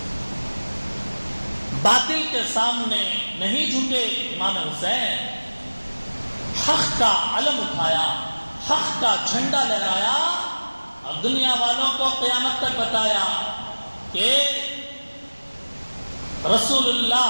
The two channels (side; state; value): both; inverted; correlation -1.00